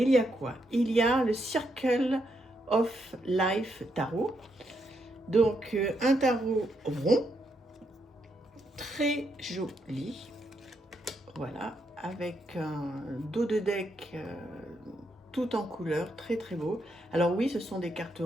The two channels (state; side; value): normal; both; correlation 0.79